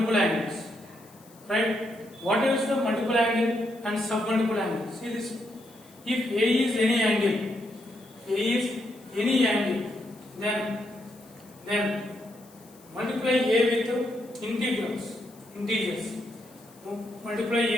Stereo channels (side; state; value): left; noise; hiss, 26 dB below the sound